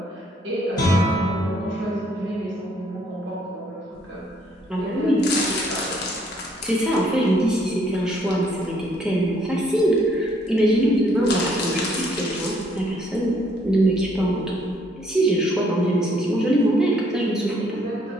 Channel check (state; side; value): normal; both; correlation 0.66